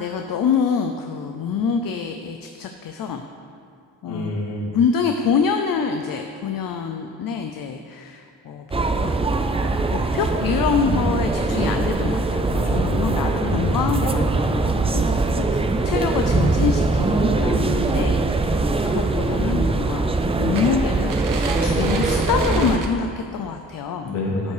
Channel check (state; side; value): normal; both; correlation 0.53